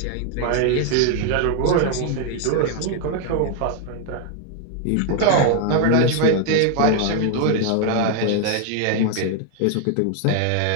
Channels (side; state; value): both; different; correlation 0.00